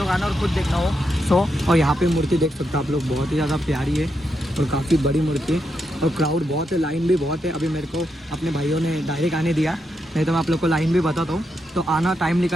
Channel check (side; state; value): both; normal; correlation 0.83